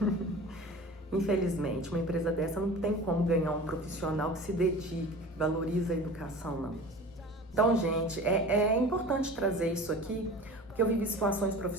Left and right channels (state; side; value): normal; both; correlation 0.38